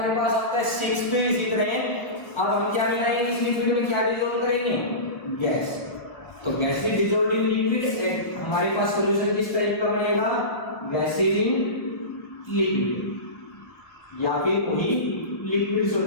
पास आता है सिक्स्थ इसी तरह। अब हम क्या मिलाएंगे इस लिक्विड में, क्या डिसॉल्व करेंगे, गैस। तो gas is dissolved in liquid, हमारे पास सॉल्यूशन किस टाइप का बनेगा, गैस इन लिक्विड या फिर वही लिक्विड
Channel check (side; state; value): right; late; 1.0 ms